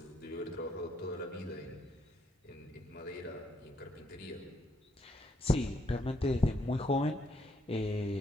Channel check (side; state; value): both; normal; correlation 0.73